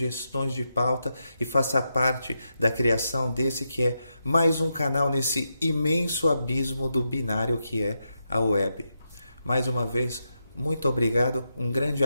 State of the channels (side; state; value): both; inverted; correlation -0.85